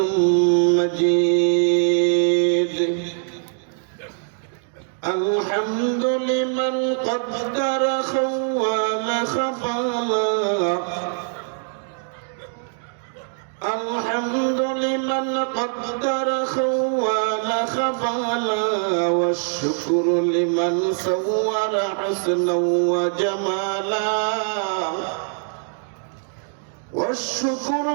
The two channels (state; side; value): silent; left; 64 dB below the other